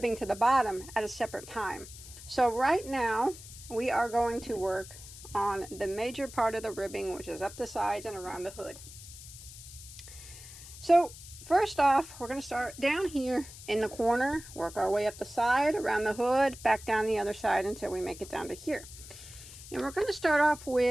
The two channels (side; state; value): left; noise; hiss, 16 dB below the sound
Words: to the bottom at a separate time. So right now we are going to work on the major part of the ribbing, which is up the sides and around the hood. So first off, we're going to start down here in the corner, work our way up the side, around the hood, back down the other side until we make it down to here. And we're going to start off